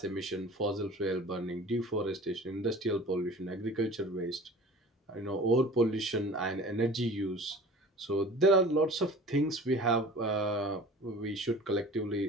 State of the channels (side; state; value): both; normal; correlation 0.43